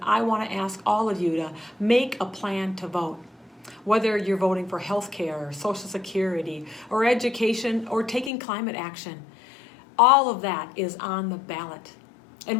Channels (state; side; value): drops out; right; at 8.3 s